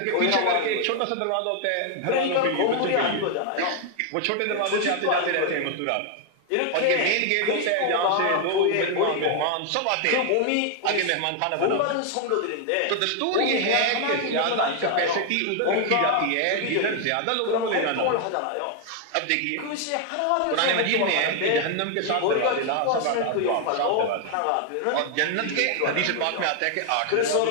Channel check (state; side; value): different; both; correlation 0.00